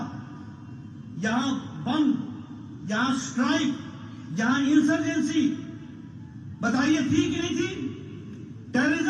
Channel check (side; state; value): both; identical; correlation 1.00